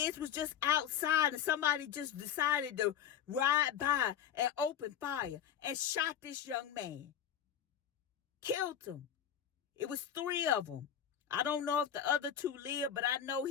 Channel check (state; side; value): quieter; right; 9.3 dB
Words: was just outside and somebody just decided to ride by and open fire and shot this young man. Killed him. It was 3 of them. I don't know if the other 2 lived, but I know